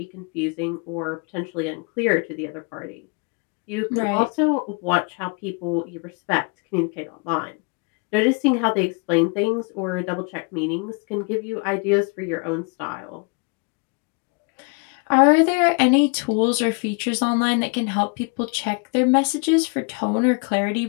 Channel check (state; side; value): quieter; right; 33.1 dB